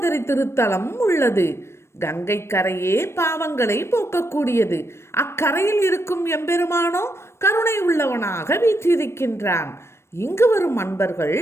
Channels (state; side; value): late; right; 0.13 ms